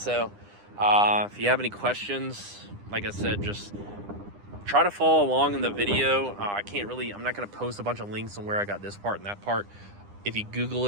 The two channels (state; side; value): late; left; 9.9 ms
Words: if you have any questions, like I said, just try to follow along in the video. I'm not going to post a bunch of links on where I got this part and that part. If you Google